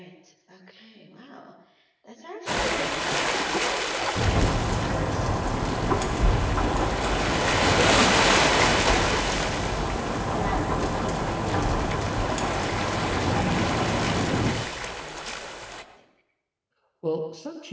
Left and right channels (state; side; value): identical; both; correlation 1.00